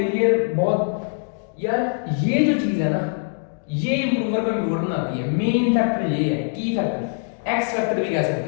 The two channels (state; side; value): silent; right; digital silence